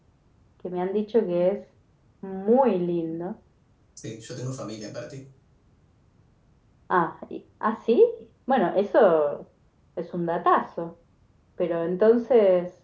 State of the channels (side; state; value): both; identical; correlation 1.00